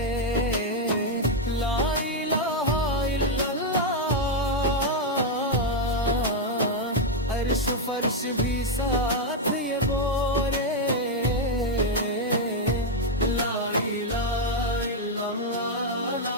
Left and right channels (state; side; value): normal; both; correlation 0.01